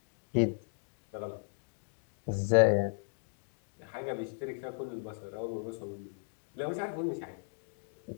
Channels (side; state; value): right; silent; digital silence